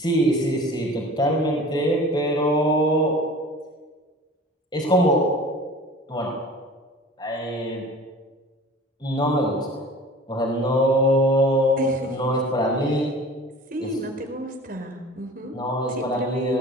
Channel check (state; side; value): normal; both; correlation 0.43